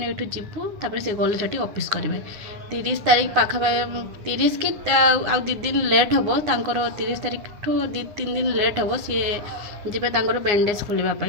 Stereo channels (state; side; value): late; left; 9.7 ms